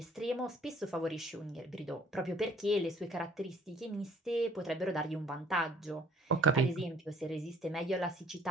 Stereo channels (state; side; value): normal; both; correlation 0.57